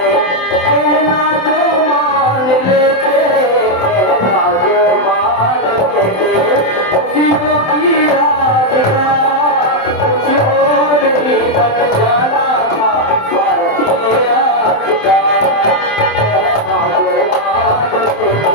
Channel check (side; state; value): right; late; 27 ms